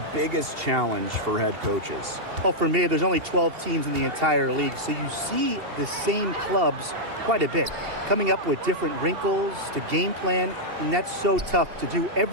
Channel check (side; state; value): left; late; 2.8 ms